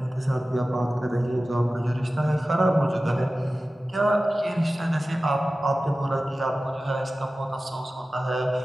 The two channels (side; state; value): both; normal; correlation 0.96